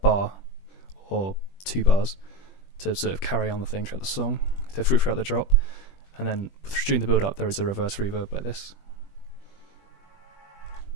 bar or 2 bars to sort of carry on the thing throughout the song, throughout the drop, and then during the build-up there is a reverse reverb like this.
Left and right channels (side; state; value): right; late; 21 ms